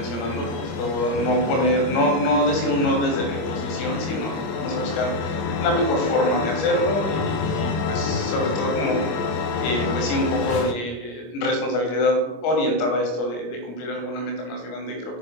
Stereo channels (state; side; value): late; right; 25 ms